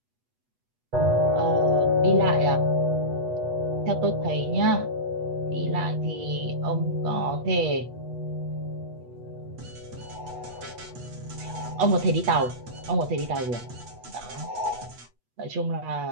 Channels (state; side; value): late; left; 8.2 ms